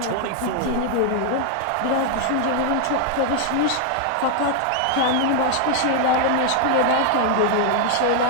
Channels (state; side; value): different; both; correlation 0.00